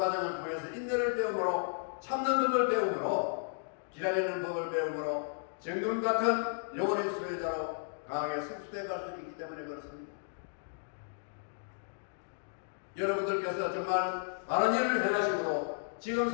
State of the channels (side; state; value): right; silent; digital silence